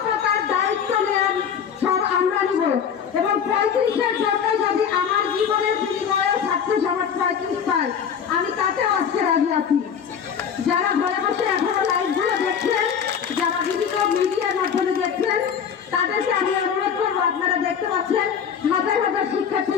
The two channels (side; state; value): right; quieter; 7.5 dB